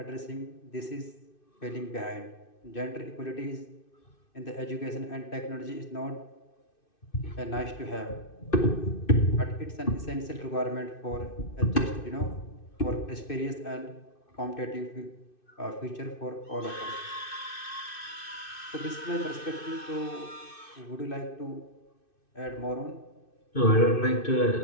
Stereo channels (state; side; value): late; right; 2.6 ms